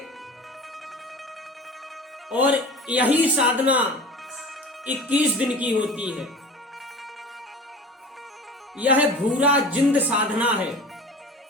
और यही साधना 21 दिन की होती है। यह भूरा जिंद साधना है,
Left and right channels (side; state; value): both; normal; correlation 0.37